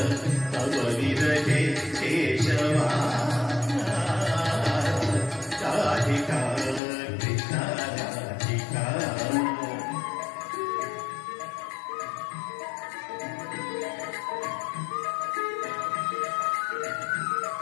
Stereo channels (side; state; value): right; drops out; at 6.8 s